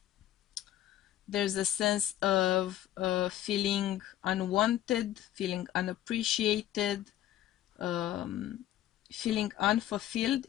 There's a sense of feeling unwanted, feeling unappreciated, feeling unfulfilled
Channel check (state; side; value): quieter; right; 13.0 dB